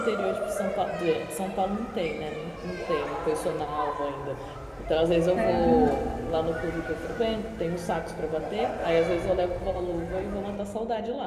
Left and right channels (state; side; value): identical; both; correlation 1.00